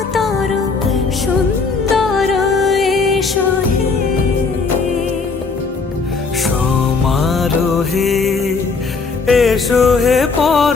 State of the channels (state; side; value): quieter; right; 4.5 dB